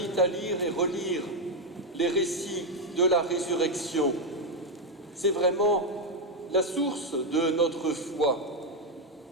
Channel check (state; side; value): normal; both; correlation 0.04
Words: à lire et relire les récits de la résurrection. C'est vraiment la source de notre foi.